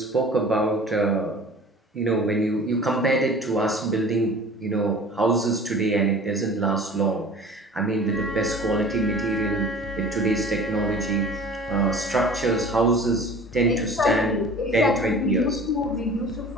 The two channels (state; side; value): normal; both; correlation 0.44